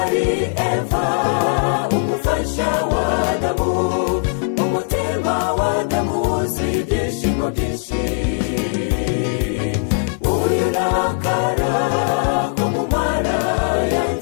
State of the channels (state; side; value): silent; right; digital silence